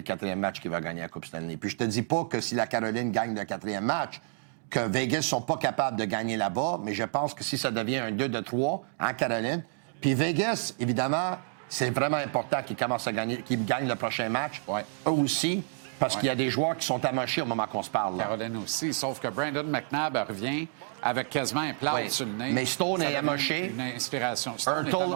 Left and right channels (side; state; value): left; silent; digital silence